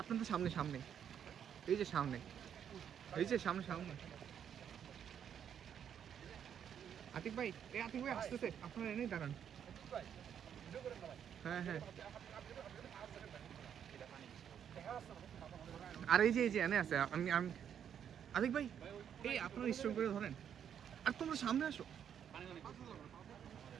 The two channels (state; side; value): quieter; left; 8.7 dB